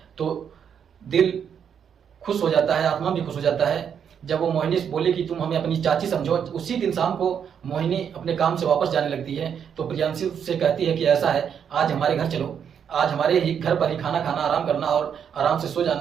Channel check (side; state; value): left; quieter; 7.9 dB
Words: तो दिल खुश हो जाता है, आत्मा भी खुश हो जाता है। जब वो मोहिनी से बोले कि तुम हमें अपनी चाची समझो, उसी दिन शाम को मोहिनी अपने काम से वापस जाने लगती है। तो प्रियांशु से कहती है कि ऐसा है, आज हमारे घर चलो, आज हमारे ही घर पर ही खाना खाना, आराम करना और आराम से सो